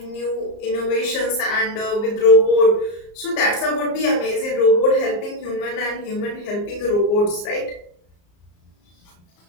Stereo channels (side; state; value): right; late; 34 ms